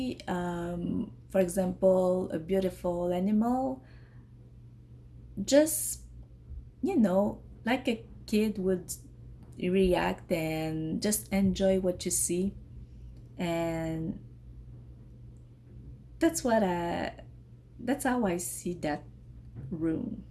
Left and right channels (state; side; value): identical; both; correlation 1.00